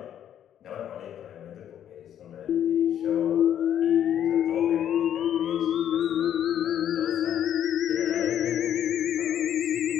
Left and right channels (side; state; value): right; quieter; 10.2 dB